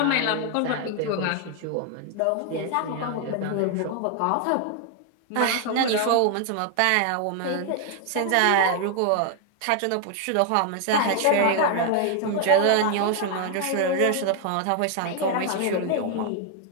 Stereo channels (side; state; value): both; different; correlation 0.00